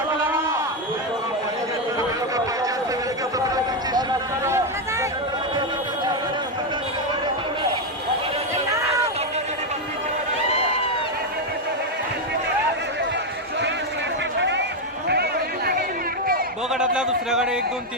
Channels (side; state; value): both; normal; correlation 0.05